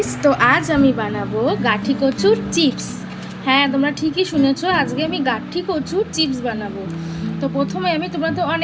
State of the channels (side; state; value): both; identical; correlation 1.00